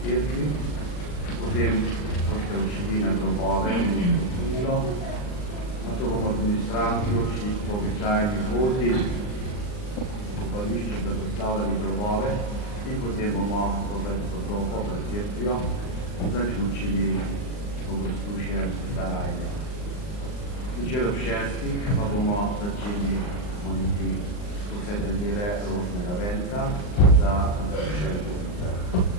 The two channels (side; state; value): right; late; 39 ms